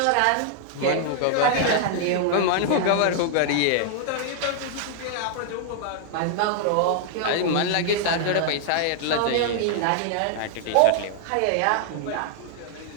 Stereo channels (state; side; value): different; both; correlation 0.00